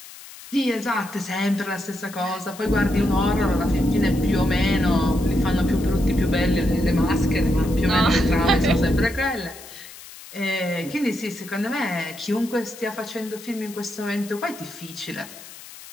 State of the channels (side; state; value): left; noise; hiss, 17 dB below the sound